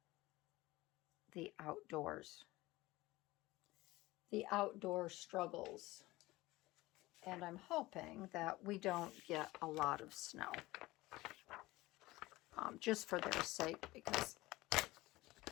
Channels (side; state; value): right; quieter; 19.3 dB